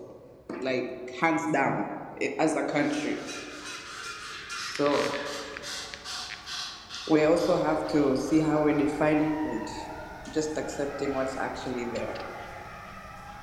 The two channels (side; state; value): both; identical; correlation 1.00